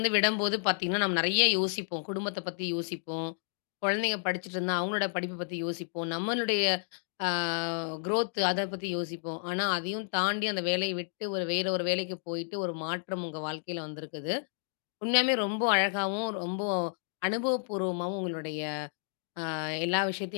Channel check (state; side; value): silent; right; digital silence